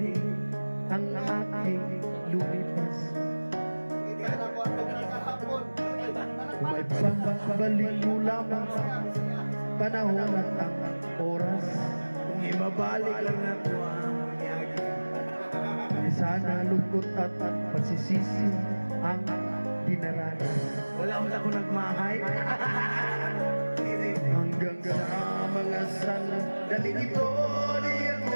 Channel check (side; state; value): both; inverted; correlation -1.00